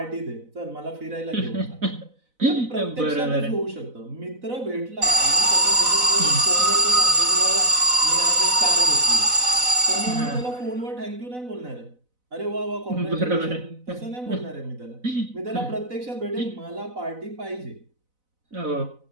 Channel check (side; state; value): left; late; 4.0 ms